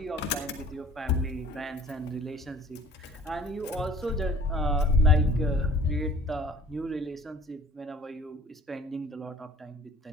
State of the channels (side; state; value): both; normal; correlation 0.50